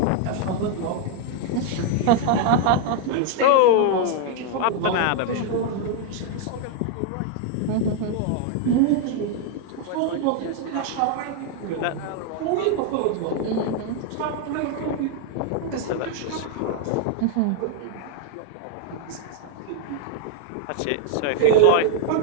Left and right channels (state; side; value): different; both; correlation 0.00